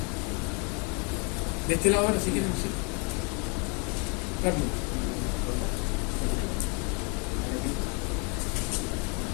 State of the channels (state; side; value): quieter; right; 34.4 dB